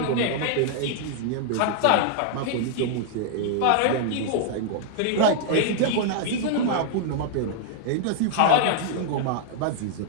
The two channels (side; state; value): both; different; correlation -0.01